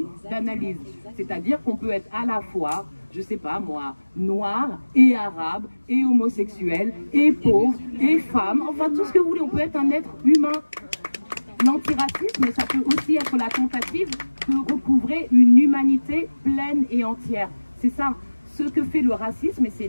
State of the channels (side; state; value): both; inverted; correlation -1.00